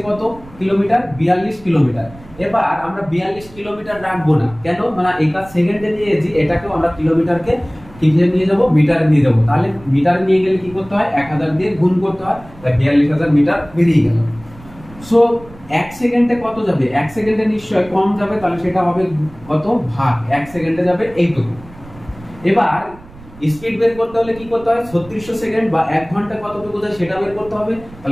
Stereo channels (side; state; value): right; noise; rumble, 20 dB below the sound